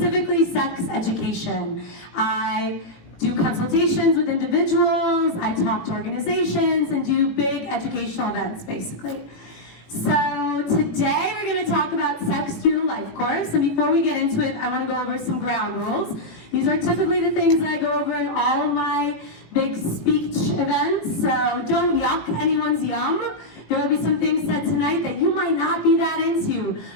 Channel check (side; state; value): right; late; 18 ms